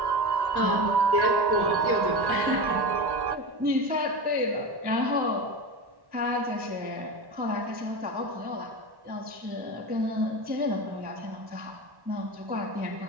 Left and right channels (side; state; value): left; late; 1.1 ms